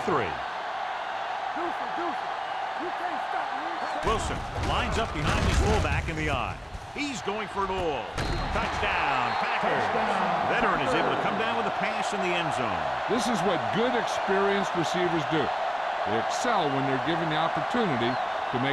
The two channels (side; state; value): both; identical; correlation 1.00